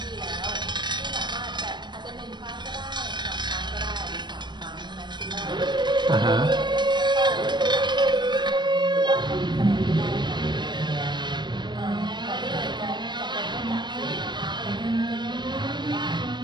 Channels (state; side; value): late; left; 0.22 ms